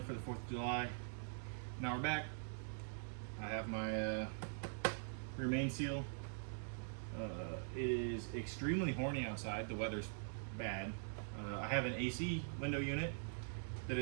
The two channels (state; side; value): silent; left; digital silence